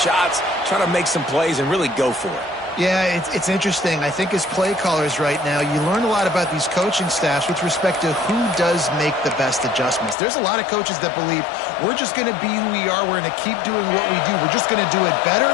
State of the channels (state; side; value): drops out; right; at 10.2 s